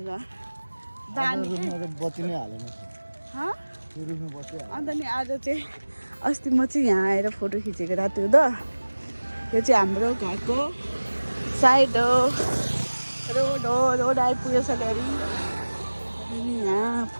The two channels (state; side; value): inverted; both; correlation -1.00